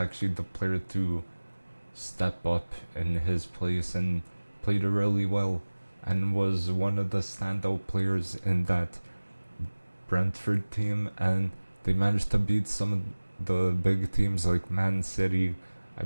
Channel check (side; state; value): both; inverted; correlation -1.00